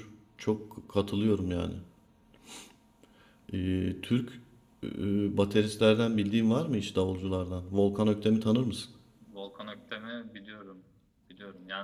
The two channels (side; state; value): both; identical; correlation 1.00